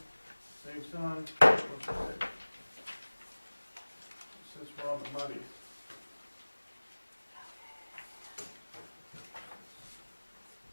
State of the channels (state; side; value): inverted; both; correlation -1.00